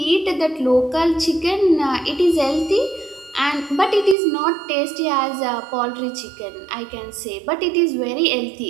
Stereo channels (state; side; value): drops out; left; at 4.2 s